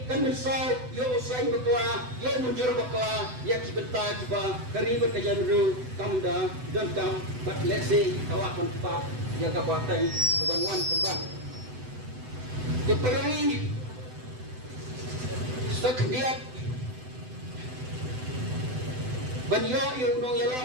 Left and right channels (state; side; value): late; left; 7.9 ms